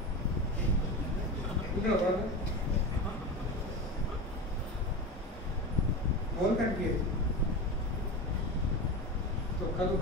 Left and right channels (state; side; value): normal; both; correlation 0.24